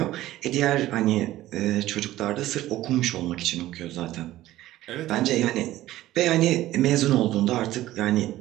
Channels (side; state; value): left; quieter; 15.2 dB